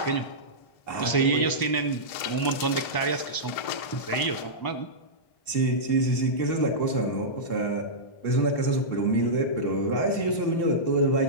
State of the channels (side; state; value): right; late; 1.0 ms